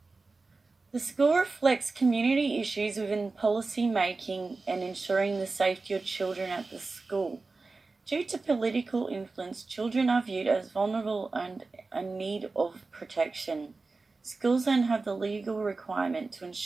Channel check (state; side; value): quieter; left; 3.8 dB